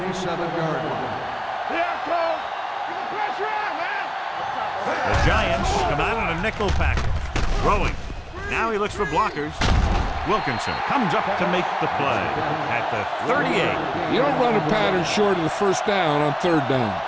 37-yard line. Yeah, Cole. Get the pressure on, man. The Giants come out in a nickel package. Throwing. Now he looks for blockers. Wilkinson comes up to make the play at the 38. You don't run a pattern short of the first down on third down.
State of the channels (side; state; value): both; identical; correlation 1.00